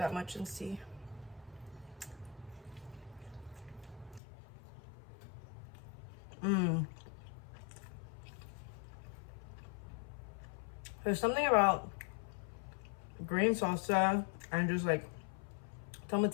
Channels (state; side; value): drops out; right; at 4.2 s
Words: much and see. There's something about green salsa and just like